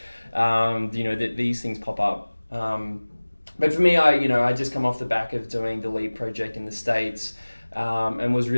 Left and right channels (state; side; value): inverted; both; correlation -1.00